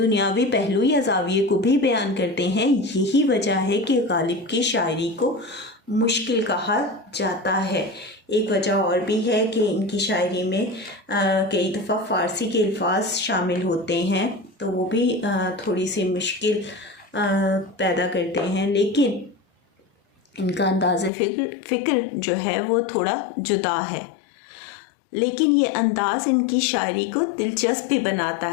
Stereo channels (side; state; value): right; drops out; at 21.1 s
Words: ہیں یہی وجہ ہے کہ غالب کی شاعری کو مشکل کہا جاتا ہے۔ ایک وجہ اور بھی ہے کہ ان کی شاعری میں کئی دفعہ فارسی کے الفاظ شامل ہوتے ہیں، تو وہ بھی تھوڑی سی مشکل پیدا کرتے ہیں، لیکن ان کا انداز فکر جو ہے وہ تھوڑا جدا ہے۔ لیکن یہ انداز ان کی شاعری کو دلچسپ بھی بناتا